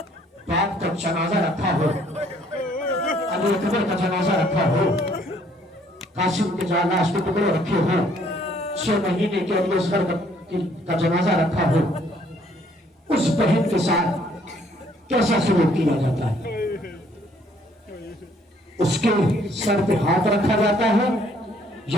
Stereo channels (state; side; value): normal; both; correlation 0.63